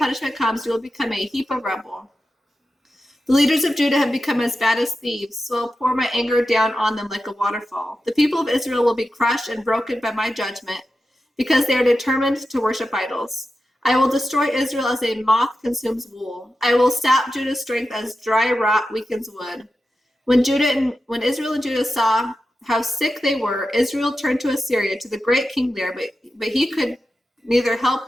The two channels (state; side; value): normal; both; correlation 0.91